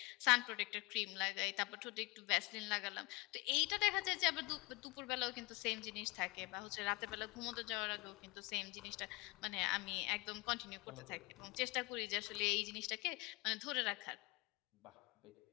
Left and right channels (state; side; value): quieter; right; 23.5 dB